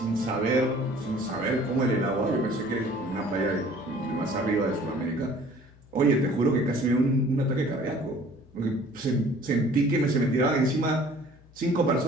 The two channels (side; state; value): left; noise; hum, 26 dB below the sound